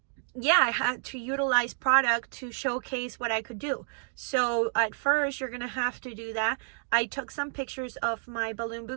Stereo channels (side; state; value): left; silent; 58 dB below the other